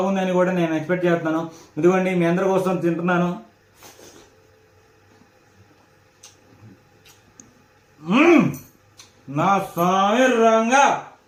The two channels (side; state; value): both; identical; correlation 1.00